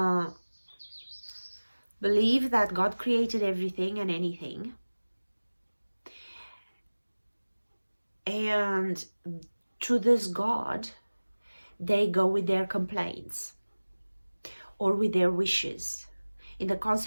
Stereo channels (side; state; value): both; inverted; correlation -1.00